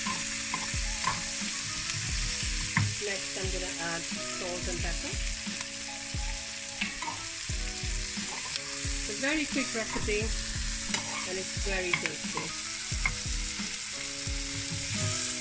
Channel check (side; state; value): both; identical; correlation 1.00